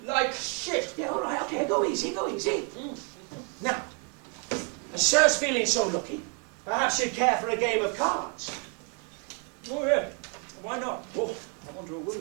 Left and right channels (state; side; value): quieter; left; 38.1 dB